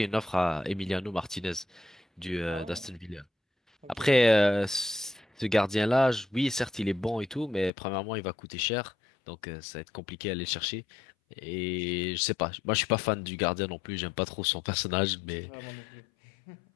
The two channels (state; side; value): drops out; right; at 7.7 s